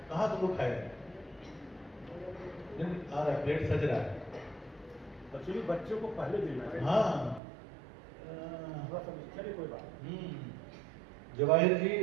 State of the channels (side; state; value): left; drops out; at 7.4 s